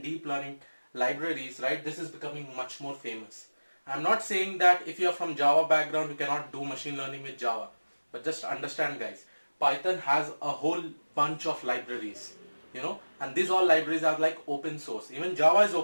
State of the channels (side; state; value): both; inverted; correlation -1.00